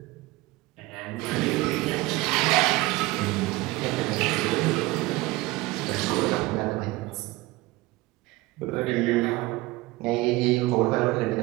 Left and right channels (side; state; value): left; quieter; 20.3 dB